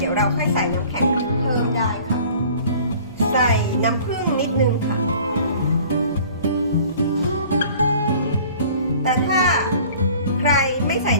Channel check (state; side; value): inverted; both; correlation -0.49